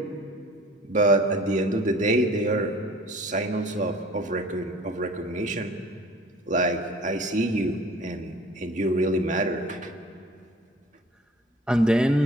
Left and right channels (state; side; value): normal; both; correlation 0.48